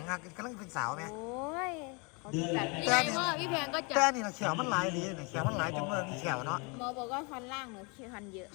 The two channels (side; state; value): right; quieter; 31.2 dB